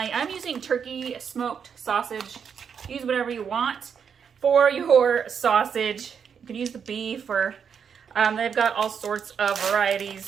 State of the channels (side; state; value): left; quieter; 7.1 dB